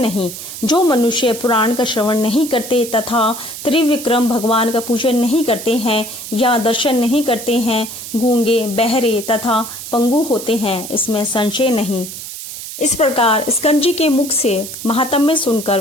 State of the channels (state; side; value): noise; right; hiss, 10 dB below the sound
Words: जो मनुष्य पुराण का श्रवण नहीं करते तथा त्रिविक्रम भगवान का पूजन नहीं करते हैं या दर्शन नहीं करते हैं, गूंगे, बहरे तथा पंगु होते हैं, इसमें संशय नहीं। इस प्रकार स्कंद के मुख से महात्म्य सुनकर